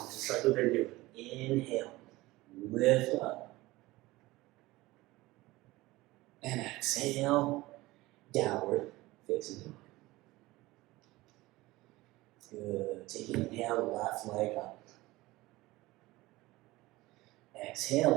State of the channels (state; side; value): quieter; left; 19.5 dB